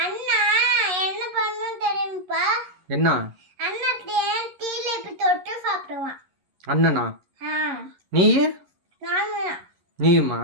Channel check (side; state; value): left; late; 11 ms